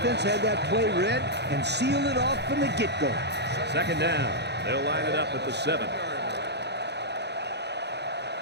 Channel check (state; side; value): late; left; 0.49 ms